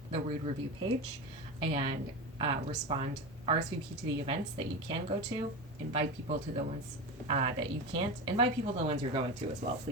the Rude Review page and RSVP to the events that you can go to, invite people to the ones that you can't, invite people to the ones you're going to as well.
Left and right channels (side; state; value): both; normal; correlation 0.23